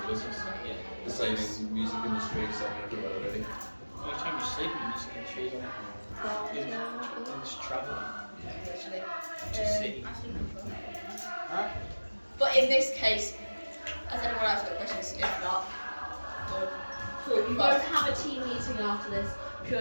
of business. Yeah. The same in music industry, same everywhere really. Every time you sleep in this country, isn't it? Just travelling. Just city. But in this case, has anyone else got questions? If not, we'll Cool. We won't have a team meeting after this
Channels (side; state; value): both; inverted; correlation -1.00